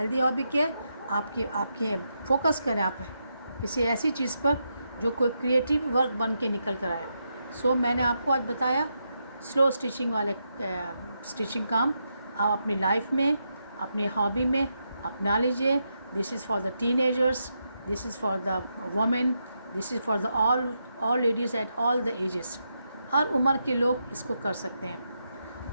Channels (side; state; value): both; inverted; correlation -0.83